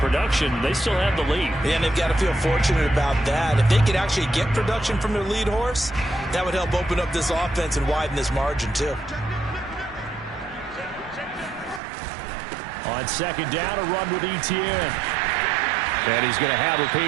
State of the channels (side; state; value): left; drops out; at 11.8 s